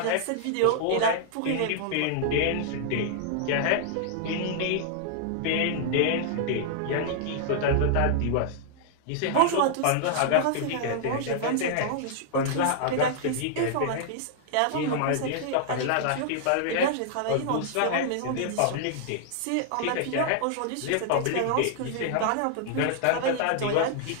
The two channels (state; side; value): different; both; correlation -0.01